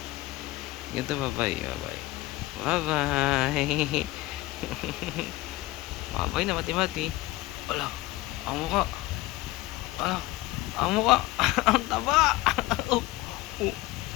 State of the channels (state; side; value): quieter; right; 18.8 dB